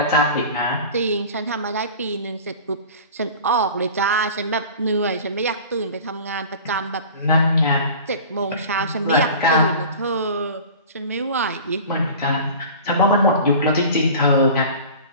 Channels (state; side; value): inverted; both; correlation -0.39